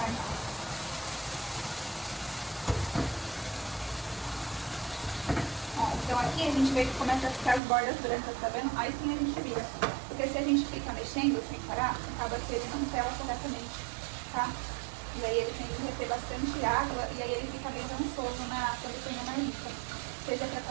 Ó, então aqui a gente vê que começa a ficar as bordas brancas, tá vendo? Aí sim a gente vira. Porque se a gente fica mexendo sem parar, acaba que ele não sela corretamente, tá? E aí ele tem que reter bastante água e aí ele fica bem dançoso quando põe na marmita. Seja pra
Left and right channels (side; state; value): left; drops out; at 7.6 s